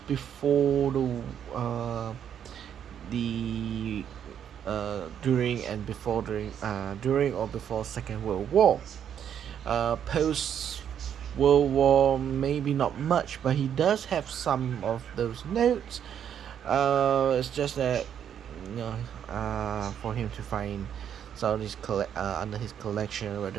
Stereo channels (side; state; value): left; quieter; 9.0 dB